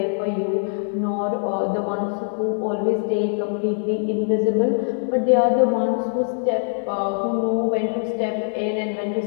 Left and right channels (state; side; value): silent; right; digital silence